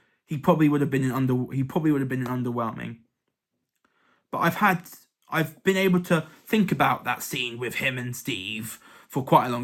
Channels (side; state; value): both; identical; correlation 1.00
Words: have been underwhelming. But I've been able to think about that scene with him and Steve for quite a